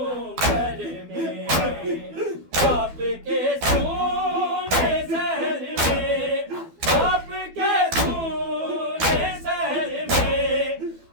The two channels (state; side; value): late; left; 12 ms